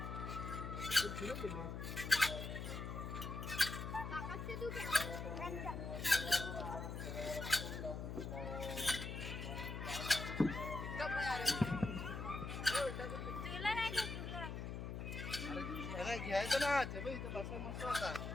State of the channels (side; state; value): left; noise; hum, 5 dB below the sound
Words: घ्यायचं ना ते बघ, इथं बसायला मस्त होता.